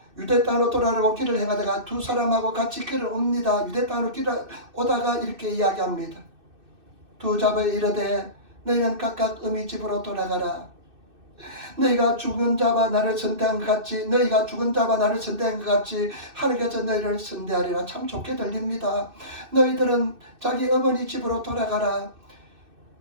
유대 땅으로 돌아가려고 길을 행하다가 두 사람하고 같이 길을 옵니다. 유대 땅으로 길을 오다가 이렇게 이야기합니다. 두 자부에 이르되 너희는 각각 어미 집으로 돌아가라. 너희가 죽은 자와 나를 선대한 것 같이 하나님께서 너희를 선대하리라. 참 좋게 들립니다. 너희들은 자기 어머니 집으로 돌아가라.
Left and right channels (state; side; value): late; left; 2.6 ms